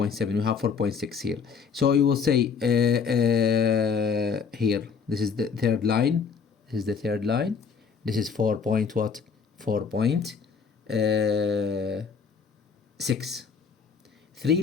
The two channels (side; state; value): right; quieter; 6.0 dB